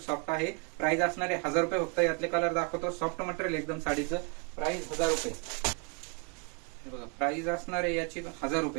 सॉफ्ट आहे. प्राइस असणार आहे 1000 रुपये फक्त. यातले कलर दाखवतो. सॉफ्ट मटेरियल एकदम साडीचं प्राइस 1000 रुपये. बघा प्राइस असणार आहे याची 1000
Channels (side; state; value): left; quieter; 36.7 dB